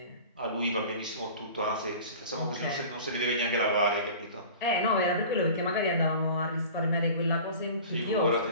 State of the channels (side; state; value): both; inverted; correlation -0.40